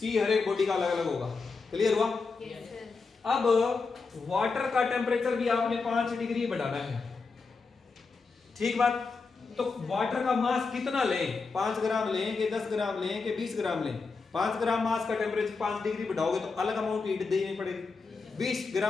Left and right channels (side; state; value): right; quieter; 4.5 dB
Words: हर एक बॉडी का अलग अलग होगा। क्लियर हुआ? Yes sir. अब वाटर का टेम्परेचर भी आपने 5 डिग्री बढ़ाना है। ठीक बात? तो वाटर का मास कितना लें? 5 ग्राम लें कि 10 ग्राम लें कि 20 ग्राम लें? 5 ग्राम मास का टेम्परेचर 5 डिग्री बढ़ाओगे तो अलग अमाउंट हीट देनी पड़ेगी। 20